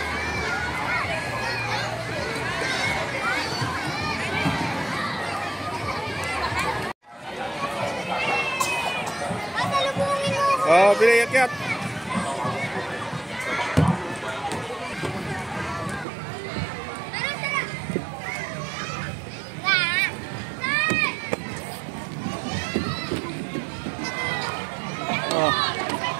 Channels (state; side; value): drops out; left; at 16.1 s